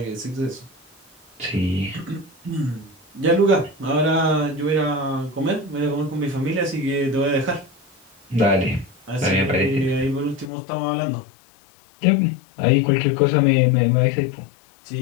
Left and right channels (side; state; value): right; drops out; at 10.5 s